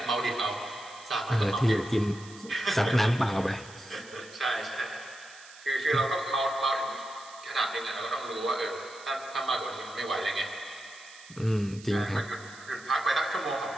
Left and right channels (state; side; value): noise; right; hiss, 19 dB below the sound